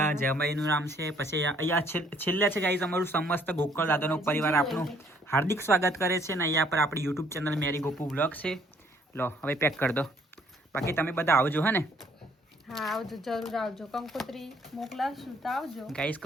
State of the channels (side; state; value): both; normal; correlation 0.63